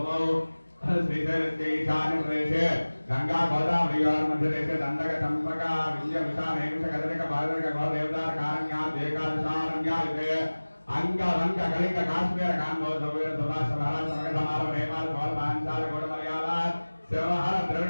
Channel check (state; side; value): inverted; both; correlation -1.00